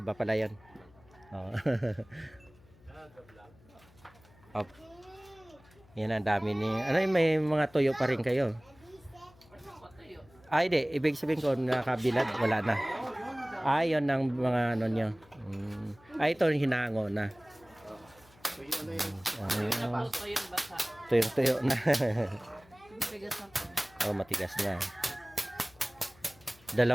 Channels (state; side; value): noise; left; hum, 27 dB below the sound